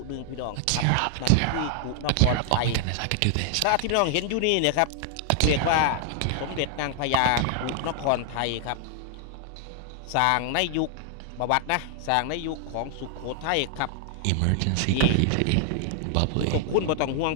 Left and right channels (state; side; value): different; both; correlation 0.00